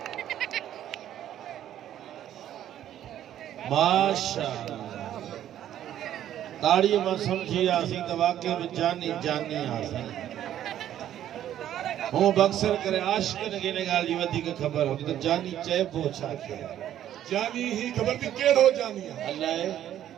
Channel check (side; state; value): left; quieter; 11.4 dB